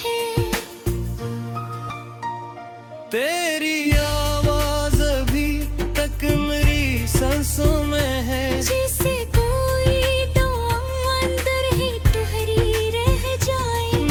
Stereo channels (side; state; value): both; identical; correlation 1.00